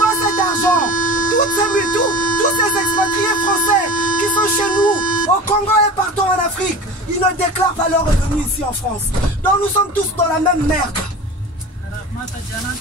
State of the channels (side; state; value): both; normal; correlation 0.34